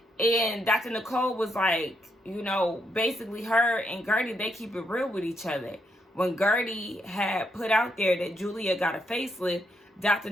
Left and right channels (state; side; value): normal; both; correlation 0.78